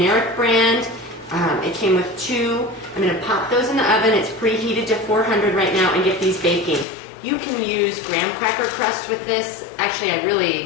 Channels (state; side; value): drops out; right; at 6.9 s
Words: brand. It came with 2. I'm going to pop those in the oven. It's preheated to 400 right now and get these baking. You can use graham cracker crust with this. Actually, I